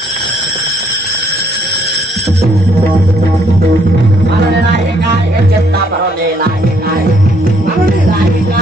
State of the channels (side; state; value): both; normal; correlation 0.68